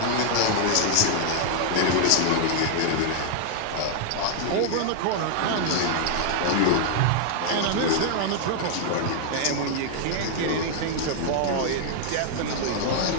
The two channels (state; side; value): different; both; correlation 0.00